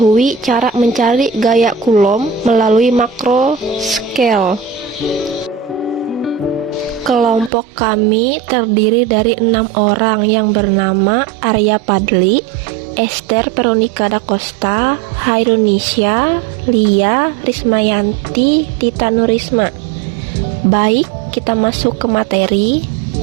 cara mencari gaya Coulomb melalui makro scale. Kelompok kami terdiri dari 6 orang yang bernama Arya Padli, Esther Veronica da Costa, Hairunisha, Lia, Rismayanti, Tita Nurisma. Baik, kita masuk ke materi.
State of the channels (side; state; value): left; drops out; at 7.5 s